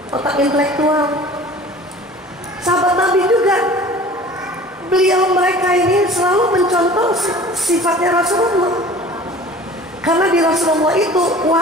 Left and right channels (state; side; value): normal; both; correlation 0.44